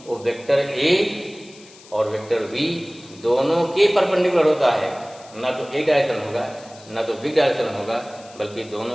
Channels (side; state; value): left; noise; hiss, 22 dB below the sound